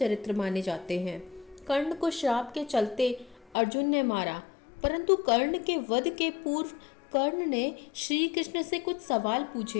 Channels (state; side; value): drops out; right; at 3.5 s